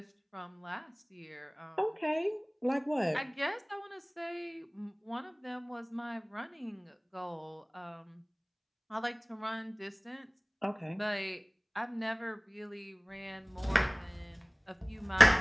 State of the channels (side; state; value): both; identical; correlation 1.00